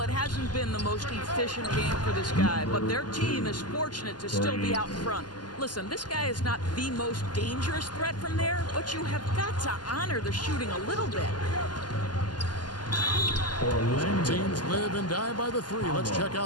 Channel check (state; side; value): late; right; 0.70 ms